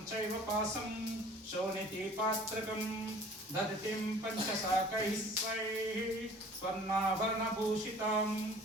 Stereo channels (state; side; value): normal; both; correlation 0.49